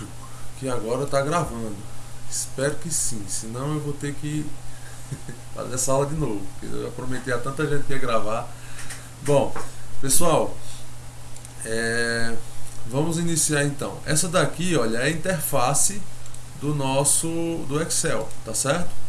que agora tá gravando. Espero que sim, senão eu vou ter que fazer essa aula de novo. Porque eu já prometi a tanta gente que ia gravar. Bom, pessoal, vamos iniciar então. Essa daqui, olha, é a interface do Excel, tá certo?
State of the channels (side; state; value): both; identical; correlation 1.00